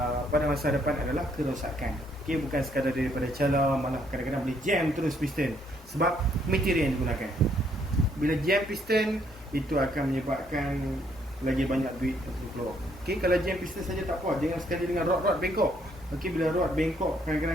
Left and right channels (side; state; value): both; normal; correlation 0.69